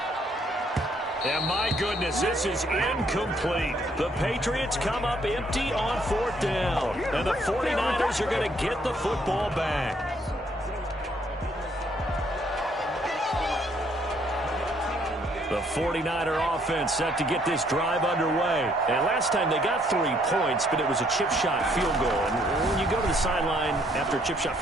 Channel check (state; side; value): normal; both; correlation 0.67